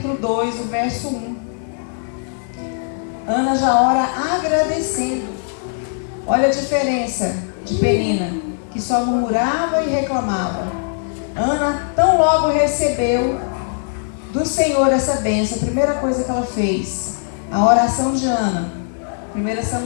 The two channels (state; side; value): silent; right; digital silence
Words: 2, o verso 1. Ana já ora agradecendo. Olha a diferença de Penina, que só murmurava e reclamava. Ana tão logo recebeu do Senhor essa bênção. A primeira coisa que ela fez, a oração de Ana. 1